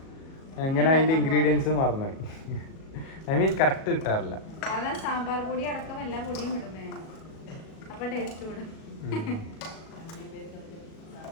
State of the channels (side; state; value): right; late; 37 ms